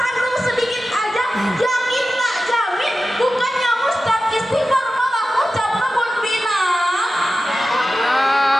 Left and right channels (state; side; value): normal; both; correlation 0.93